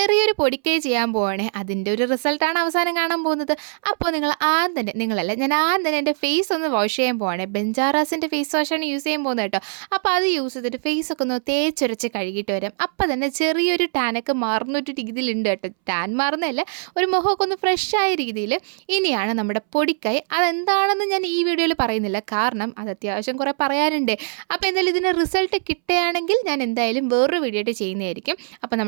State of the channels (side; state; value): left; silent; 64 dB below the other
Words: പൊടിക്കൈ ചെയ്യാൻ പോവാണേ, അതിൻ്റെ ഒരു റിസൾട്ടാണ് അവസാനം കാണാൻ പോകുന്നത്. അപ്പോൾ ഞാൻ ആദ്യം തന്നെ എൻ്റെ ഫേസ് ഒന്ന് വാഷ് ചെയ്യാൻ പോവാണേ. ബെഞ്ചാറാസിൻ്റെ ഫേസ് വാഷാണ് യൂസ് ചെയ്യാൻ പോകുന്നത് കേട്ടോ. അപ്പോൾ അത് യൂസ് ചെയ്തിട്ട് ഫേസൊക്കെ ഒന്ന് തേച്ചൊരച്ച് കഴുകിയിട്ട് വരാം. അപ്പോൾ തന്നെ ചെറിയൊരു ടാനൊക്കെ മാറുന്നൊരു രീതിയിലുണ്ട് കേട്ടോ. ടാൻ മാറുന്നതല്ല, ഒരു മുഖമൊക്കെ ഒന്ന് ഫ്രഷായ രീതിയിൽ. ഇനിയാണ് നമ്മുടെ പൊടിക്കൈ. അതെന്താണെന്ന് ഞാൻ ഈ വീഡിയോയിൽ പറയുന്നില്ല, കാരണം അത് അത്യാവശ്യം കുറേ പറയാനുണ്ട്. അപ്പോൾ എന്തായാലും ഇതിന് റിസൾട്ട് കിട്ടുകയാണെങ്കിൽ ഞാൻ എന്തായാലും വേറൊരു വീഡിയോ ആയിട്ട് ചെയ്യുന്നതായിരിക്കും. അപ്പോൾ